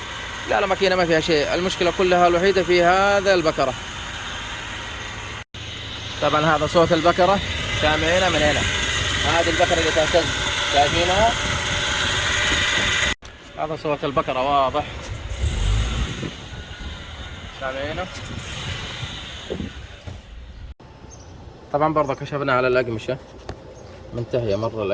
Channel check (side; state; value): both; identical; correlation 1.00